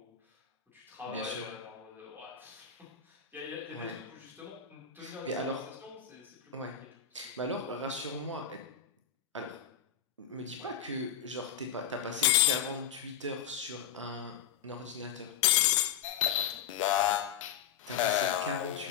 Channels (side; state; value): right; quieter; 8.5 dB